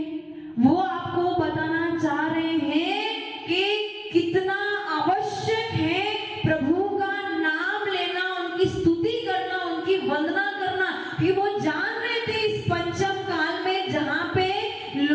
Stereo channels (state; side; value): identical; both; correlation 1.00